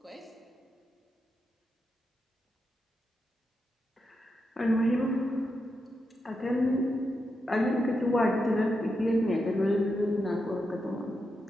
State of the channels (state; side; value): normal; both; correlation 0.86